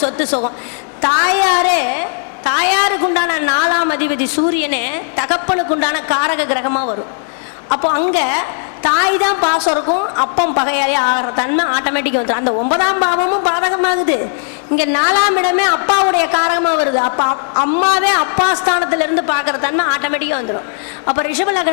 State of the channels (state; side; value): silent; right; digital silence